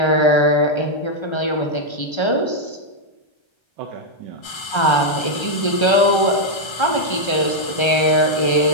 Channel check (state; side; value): late; right; 1.3 ms